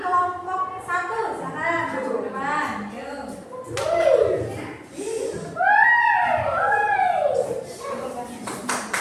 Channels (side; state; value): both; identical; correlation 1.00